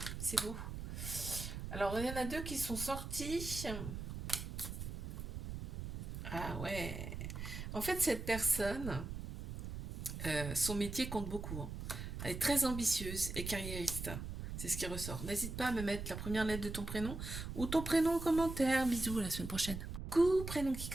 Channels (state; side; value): noise; right; rumble, 6 dB below the sound